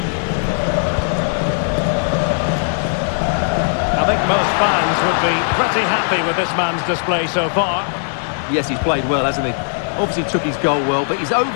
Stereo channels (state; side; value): silent; right; digital silence